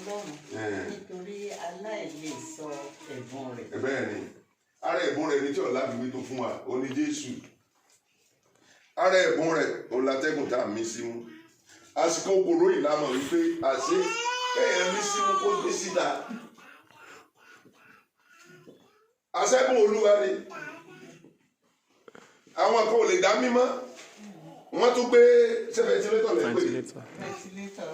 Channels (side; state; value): both; identical; correlation 1.00